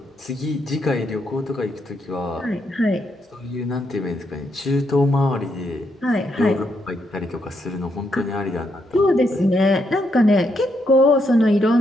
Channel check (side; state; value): both; normal; correlation 0.78